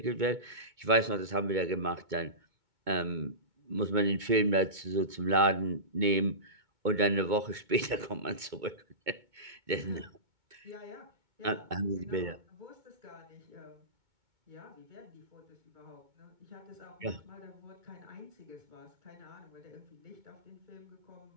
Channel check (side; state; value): left; late; 2.2 ms